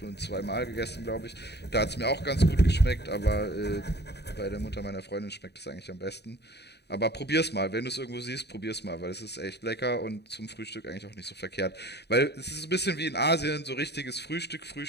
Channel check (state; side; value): late; right; 0.49 ms